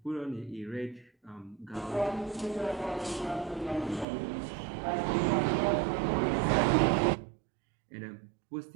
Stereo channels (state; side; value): drops out; left; at 4.0 s